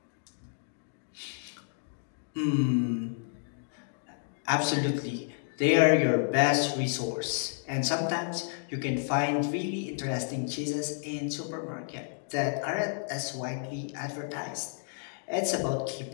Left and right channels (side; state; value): right; silent; digital silence